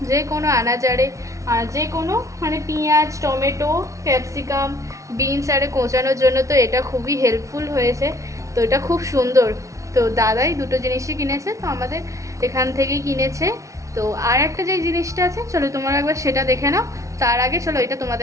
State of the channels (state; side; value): late; left; 0.15 ms